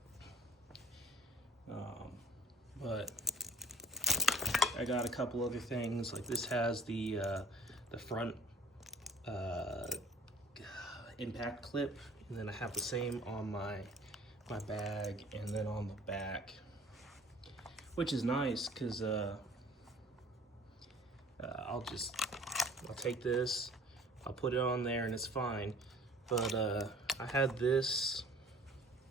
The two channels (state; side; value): normal; both; correlation 0.49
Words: But I got a couple other things, like this has the front impact clip, and then I have the same on my bag and then on the back, which is nice because I'll take this, I'll put it on there and it's fine. But I had this